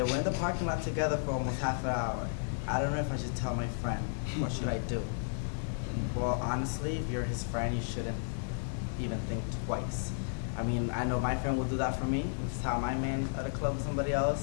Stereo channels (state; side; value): silent; right; digital silence